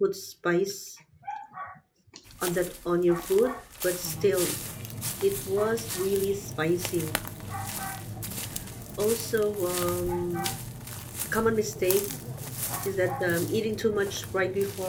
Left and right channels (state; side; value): identical; both; correlation 1.00